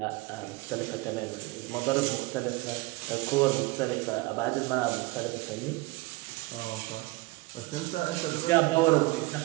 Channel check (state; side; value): quieter; left; 22.3 dB